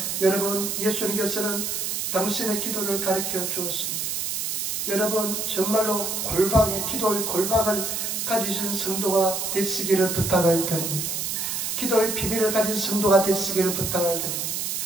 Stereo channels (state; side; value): noise; right; hiss, 2 dB below the sound